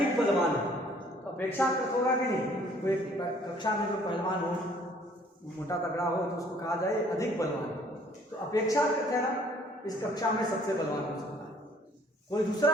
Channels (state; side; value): normal; both; correlation 0.58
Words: बलवान है तो अपेक्षाकृत होगा कि नहीं? कोई कक्षा में जो पहलवान हो, मोटा तगड़ा हो, तो उसको कहा जाए अधिक बलवान, तो अपेक्षाकृत है ना, इस कक्षा में सबसे बलवान हो सकता है। कोई दूसरा